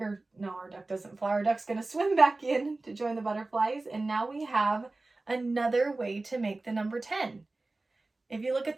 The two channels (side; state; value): left; quieter; 3.1 dB